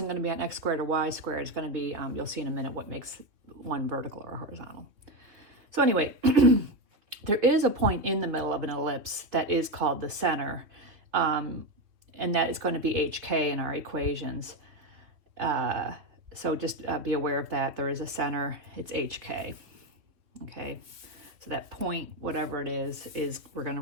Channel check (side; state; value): left; late; 3.2 ms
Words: going to be on x squared or y squared. It's going to be, you'll see in a minute what makes one vertical or horizontal. So anyway, there is a point in the middle of an ellipse that is called the center. And that is going to be HK in our equations. So just be aware of that. There is a center, it's HK. Okay, so that point, whatever it is we're going